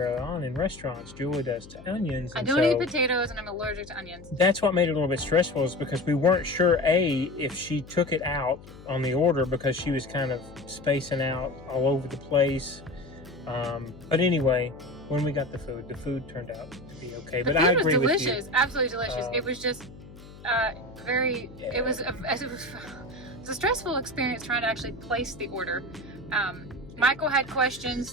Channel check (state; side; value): noise; left; hum, 18 dB below the sound